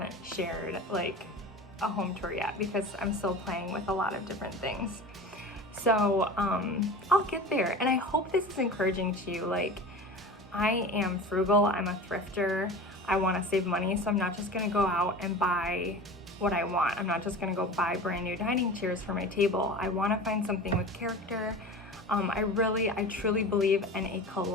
shared like a home tour yet, because I'm still playing with a lot of different things. So I'll get there, and I hope this is encouraging to you. Like, I am frugal, I'm a thrifter, I want to save money, so I'm not just gonna go out and buy what I want. I'm not just gonna go buy brand new dining chairs for my table. I want to find something with character. I truly believe in a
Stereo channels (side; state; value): both; normal; correlation 0.34